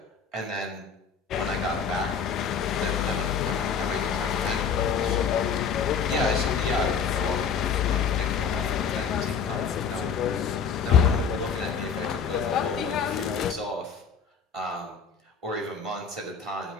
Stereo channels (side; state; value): right; quieter; 6.3 dB